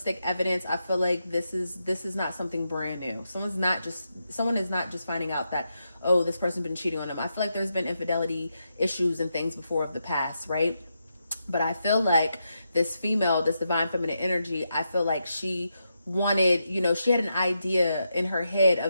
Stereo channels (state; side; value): inverted; both; correlation -0.84